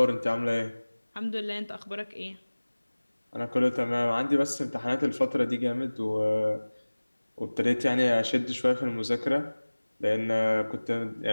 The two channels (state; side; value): inverted; both; correlation -1.00